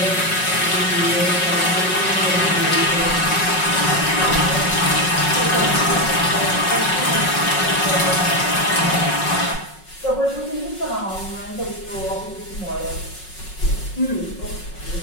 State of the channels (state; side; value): late; right; 5.4 ms